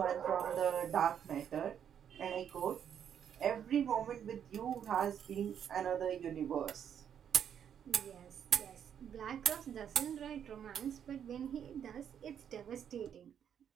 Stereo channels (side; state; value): left; quieter; 8.7 dB